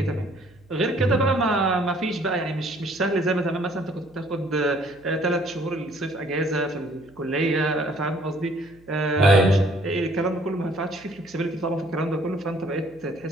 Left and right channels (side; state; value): right; noise; hum, 28 dB below the sound